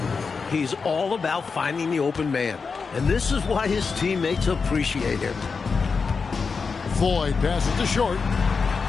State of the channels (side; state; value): right; quieter; 5.0 dB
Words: He's all about finding the open man, and this is why his teammates appreciate him. Floyd passes to Short.